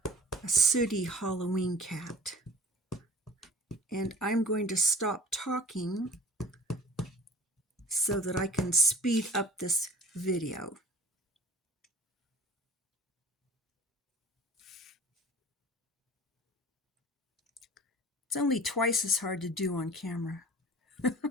sooty Halloween cat. And I'm going to stop talking so that I can speed up this video. It's only twice as hard to do on camera.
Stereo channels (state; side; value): normal; both; correlation 0.43